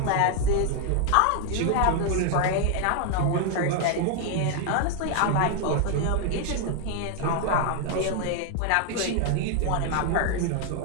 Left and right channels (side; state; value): both; different; correlation 0.00